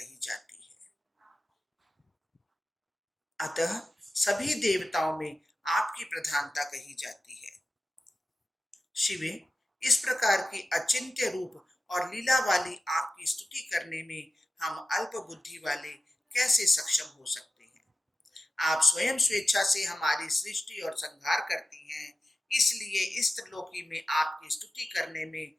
जाती है, अतः सभी देवताओं में आपकी प्रधानता कही जाती है। शिवे, इस प्रकार की अचिंत्य रूप और लीला वाली आपकी स्तुति करने में हम अल्प बुद्धि वाले कैसे सक्षम हो सकते हैं। आप स्वयं स्वेच्छा से हमारी सृष्टि और संहार करती हैं, इसलिए इस त्रिलोकी में आपकी स्तुति करने में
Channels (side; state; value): both; normal; correlation 0.94